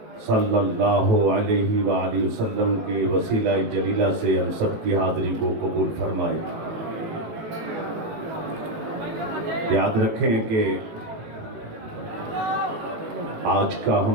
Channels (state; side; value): late; left; 18 ms